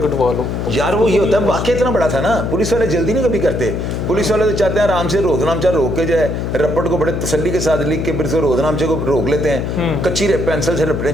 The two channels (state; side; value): noise; left; hum, 2 dB below the sound